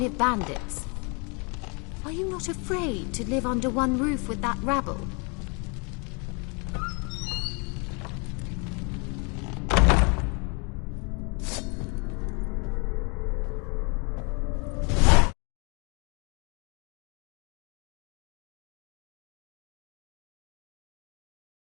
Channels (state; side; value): quieter; right; 33.0 dB